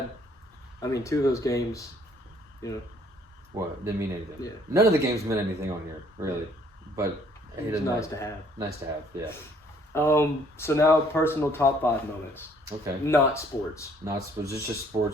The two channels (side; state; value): both; normal; correlation 0.61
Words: I mean, 2 of those games, What? Didn't mean anything. Yeah. None of the games meant anything on here, really. But it's nice to have. Nice to have, yeah. So now personal top 5 moments. Okay. Not sports. Not sports. It's just